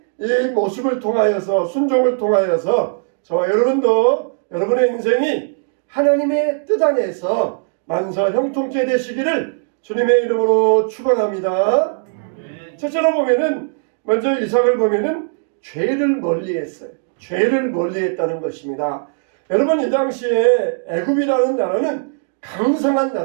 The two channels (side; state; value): left; silent; digital silence